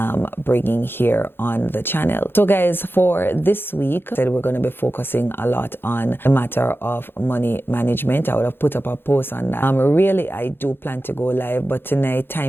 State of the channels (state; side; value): late; right; 0.10 ms